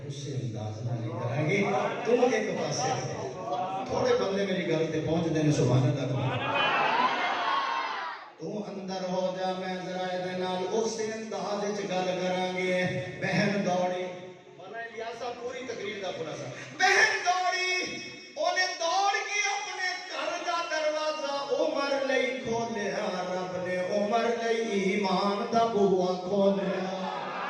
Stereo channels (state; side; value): identical; both; correlation 1.00